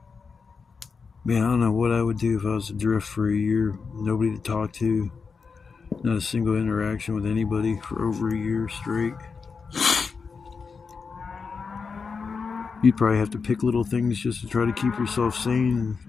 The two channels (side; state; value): right; quieter; 5.2 dB